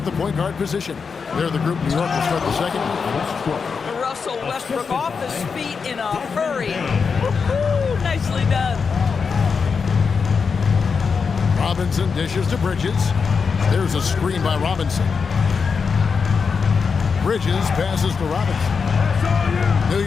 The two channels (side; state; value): right; quieter; 5.5 dB